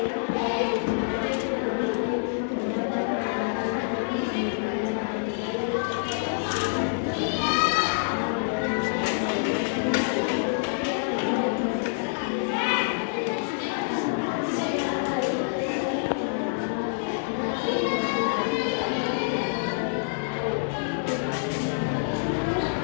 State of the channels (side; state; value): right; silent; digital silence